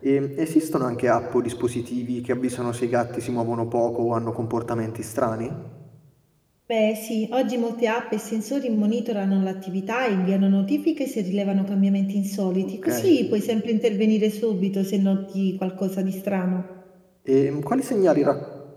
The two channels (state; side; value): identical; both; correlation 1.00